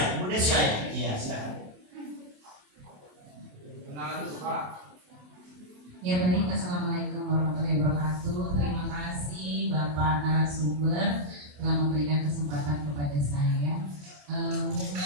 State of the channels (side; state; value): left; late; 27 ms